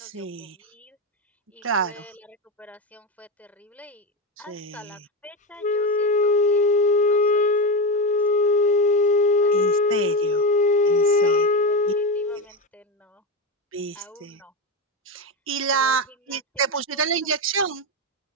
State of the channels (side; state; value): both; normal; correlation 0.15